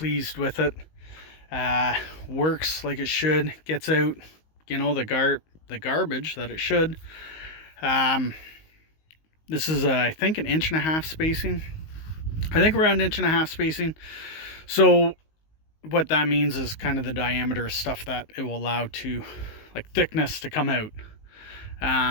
with it. Works like it should. Gets out, the garbage that it should. This is I think an 1.5 inch spacing. I think around 1.5 inch spacing. So what that means is kind of the diameter of stuff that it will allow to, like, thickness to come out.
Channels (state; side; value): late; right; 19 ms